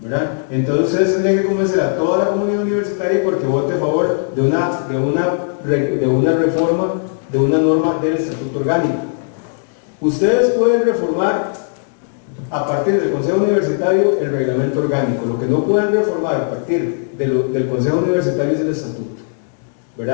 ¿verdad? Entonces ustedes tendrían que convencer a toda la comunidad universitaria porque vote a favor de una reforma, de una norma del estatuto orgánico. Ustedes pueden reformar a partir del Consejo Universitario el reglamento orgánico. Lo que no pueden reformar a partir del Consejo Universitario es el estatuto,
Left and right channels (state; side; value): silent; right; digital silence